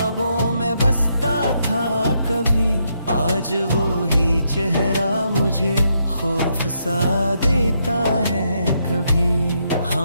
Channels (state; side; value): inverted; both; correlation -0.78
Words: में बसता था कभी, आज वो ही चेहरा मुझे खौफ सा देता है कभी।